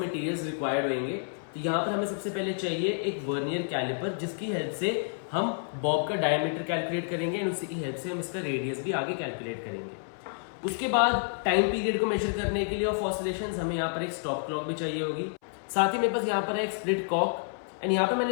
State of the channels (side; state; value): right; silent; 58 dB below the other